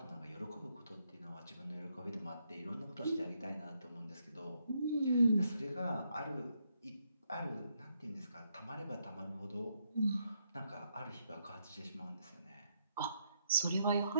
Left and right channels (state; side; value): inverted; both; correlation -0.77